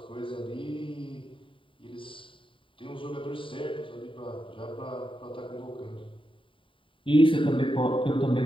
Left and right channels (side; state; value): right; late; 0.25 ms